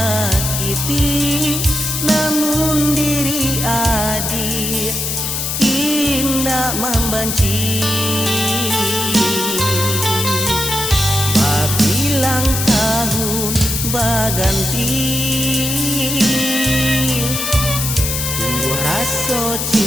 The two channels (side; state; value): left; noise; hiss, 2 dB below the sound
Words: namun diri adi indah membenci. Bilang tahun baganti, tumbuh rasa